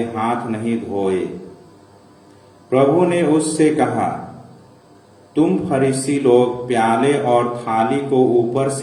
हाथ नहीं धोए। प्रभु ने उससे कहा, तुम फरीसी लोग प्याले और थाली को ऊपर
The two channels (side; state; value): both; identical; correlation 1.00